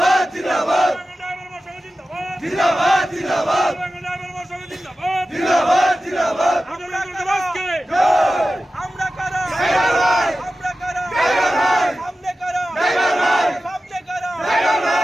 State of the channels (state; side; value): normal; both; correlation 0.94